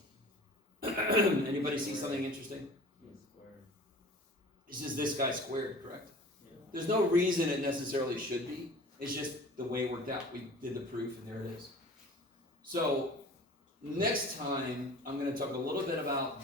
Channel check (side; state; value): both; normal; correlation 0.42